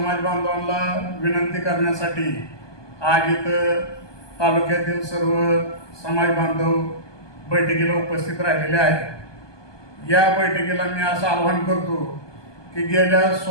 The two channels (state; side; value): late; right; 1.2 ms